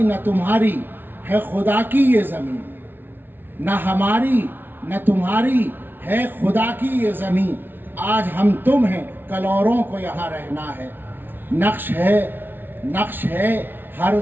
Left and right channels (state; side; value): late; left; 0.098 ms